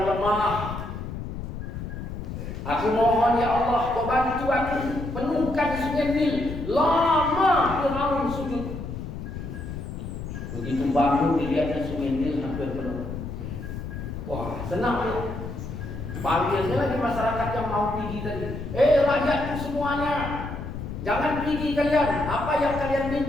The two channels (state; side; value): noise; left; rumble, 7 dB below the sound